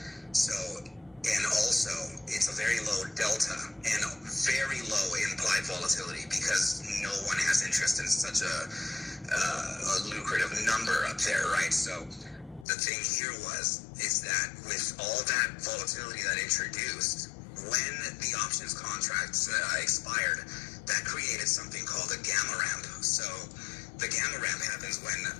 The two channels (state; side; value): drops out; right; at 12.7 s